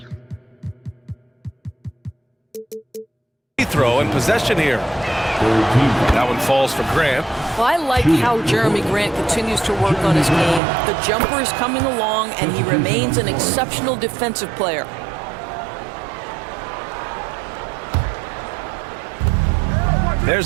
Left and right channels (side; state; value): left; drops out; at 10.6 s